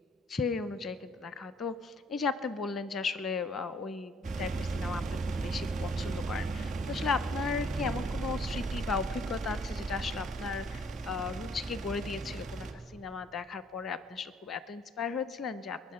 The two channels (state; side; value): normal; both; correlation 0.63